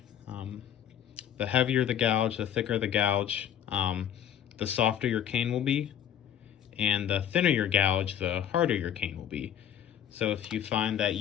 The heavier the gouge, the thicker the gouge, the softer your cane will be. And the thinner your gouge, the harder your cane will be. So if you find that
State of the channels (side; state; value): right; quieter; 9.9 dB